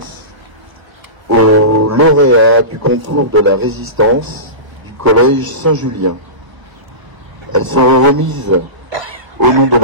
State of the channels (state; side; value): late; left; 1.0 ms